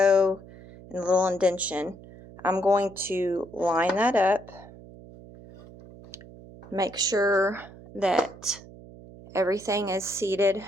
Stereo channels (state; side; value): noise; right; hum, 19 dB below the sound